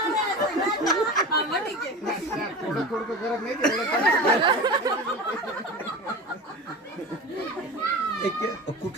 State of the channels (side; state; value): both; normal; correlation 0.30